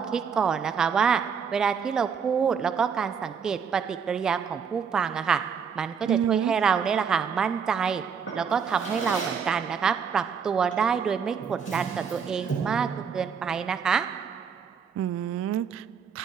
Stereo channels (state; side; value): quieter; left; 6.7 dB